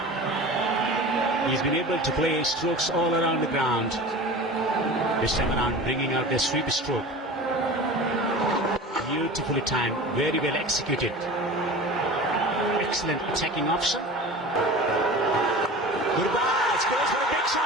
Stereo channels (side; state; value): both; normal; correlation 0.36